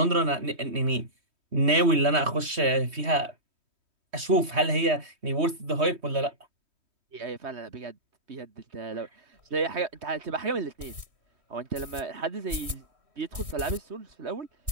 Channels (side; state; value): left; late; 3.2 ms